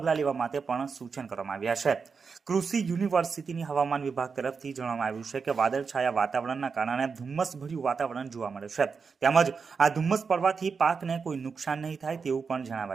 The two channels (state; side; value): quieter; left; 5.3 dB